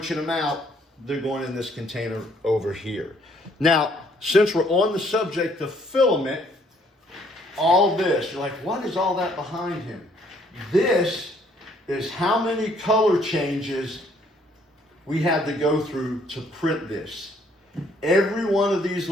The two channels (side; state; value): both; normal; correlation 0.65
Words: them out, they're going in this container over here. Now, since we're on the subject of filament, all this, you're like, what is all that behind him? This is how many color changes we had to go through to print this. Every one of these